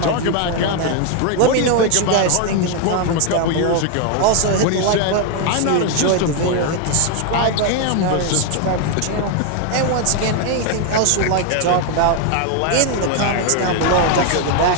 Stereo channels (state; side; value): different; both; correlation 0.01